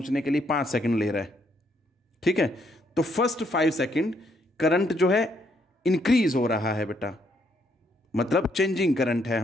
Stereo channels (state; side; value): normal; both; correlation 0.72